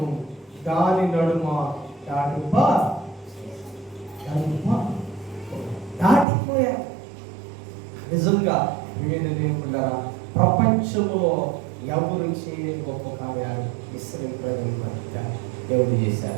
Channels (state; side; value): drops out; left; at 6.2 s